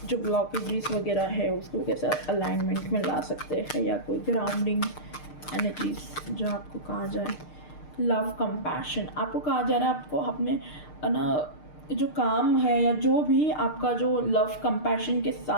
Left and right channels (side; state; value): right; late; 6.6 ms